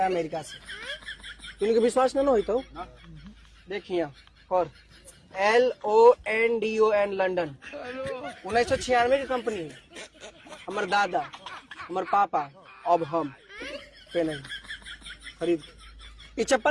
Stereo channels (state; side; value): identical; both; correlation 1.00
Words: अमेरिका से। तुमके विश्वास न हो तो देखिए और LONDON लंदन 1996 की कंपनी है। हमार दादा हमार पापा अब हम पहने खरीद। ये